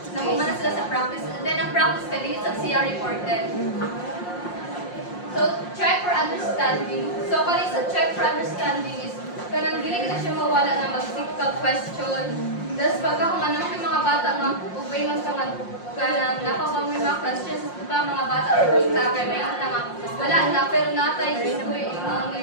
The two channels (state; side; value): late; right; 5.6 ms